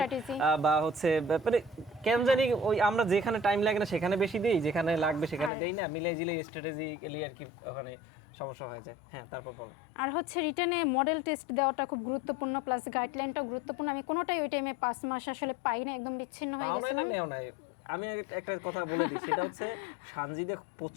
বা হচ্ছে মানে কেন জানি ওই আমরা যেখানে টাইম লাগে না সেখানে বেশি দেই, যেখানে লাগবে সেখানে দেই না, মিলাই জিলে স্ট্র্যাটেজিক্যালি আর কি ওখানে সমস্যা হয়ে যায়। হ্যাঁ, তারপর বলো। আর হচ্ছে রিটার্নে মডেল টেস্ট দেওয়াটা খুব গুরুত্বপূর্ণ, প্লাস গাইডলাইনটাও গুরুত্বপূর্ণ। আমি কোনোটাই ওই টাইমে 5 মাস আসলে পাই না, একদম বিচ্ছিন্ন হয়ে পাও নাই না গেছিলাম। নেও নাই। আমি একটা কথা বলে দিই, সেটা হচ্ছে সানজিদা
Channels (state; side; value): drops out; right; at 5.5 s